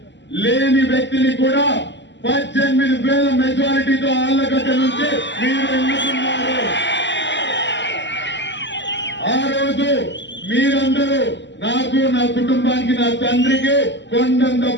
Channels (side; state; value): right; late; 0.52 ms